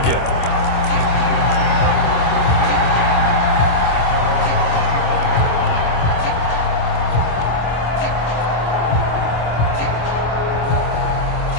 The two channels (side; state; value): right; late; 25 ms